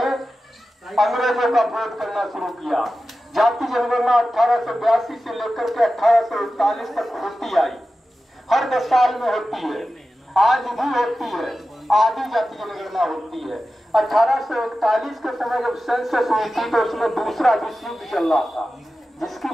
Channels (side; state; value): both; normal; correlation 0.93